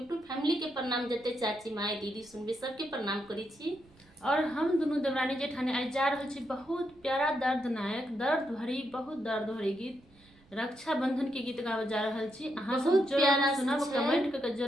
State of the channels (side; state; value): right; noise; rumble, 29 dB below the sound